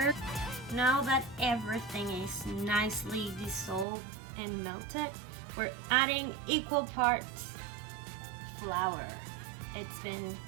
Now that everything is nicely dissolved and melted, we're adding equal parts flour. It's been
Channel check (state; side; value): drops out; left; at 3.9 s